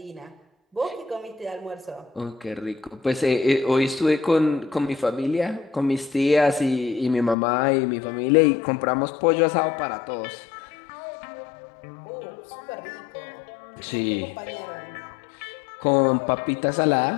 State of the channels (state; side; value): drops out; right; at 7.4 s